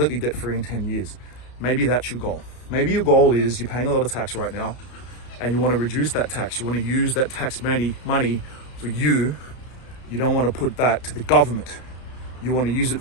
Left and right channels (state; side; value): late; right; 31 ms